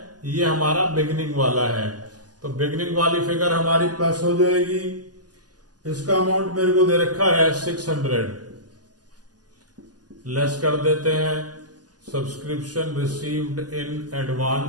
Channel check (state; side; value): late; left; 0.68 ms